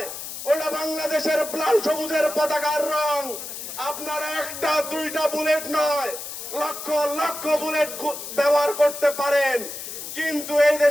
ওটা বাংলাদেশের লাল সবুজের পতাকার রং। আপনারা একটা দুইটা বুলেট নয়, লক্ষ লক্ষ বুলেট ব্যবহার করতে পারেন, কিন্তু এই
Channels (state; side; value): noise; left; hiss, 9 dB below the sound